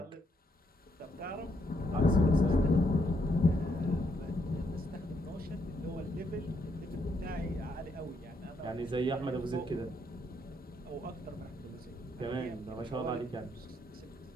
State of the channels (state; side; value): normal; both; correlation 0.75